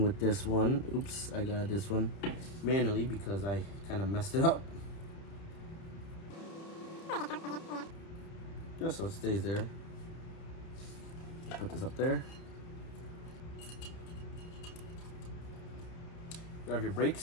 with this one. Oops, I got this one manually because I kind of messed it up. Just so it stays there. Put this up there. Grab your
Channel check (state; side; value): late; right; 30 ms